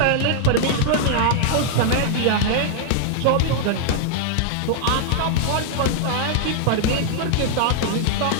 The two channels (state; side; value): different; both; correlation -0.01